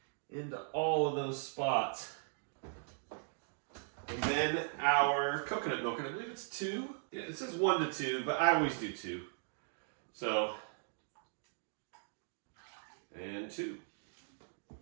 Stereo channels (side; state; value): left; silent; digital silence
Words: into all of those spots. And then our coconut milk, and I believe it's 2. Yeah, it says 1 to 2, but I always do 2. So, and 2.